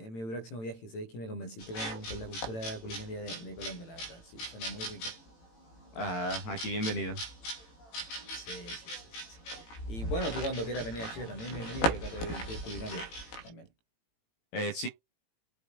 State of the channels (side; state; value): right; late; 18 ms